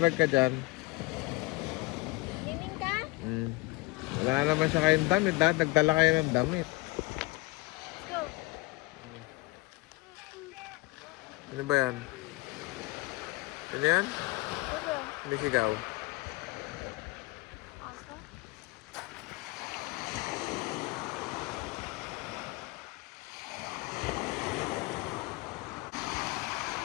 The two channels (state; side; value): quieter; right; 22.7 dB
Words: ka dyan. Swimming ka? Wala naman siya kayong damit. Lahat nagdala kayo ng damit. Go. Ano ba yan? Ano yan? Go. Hindi sigaw.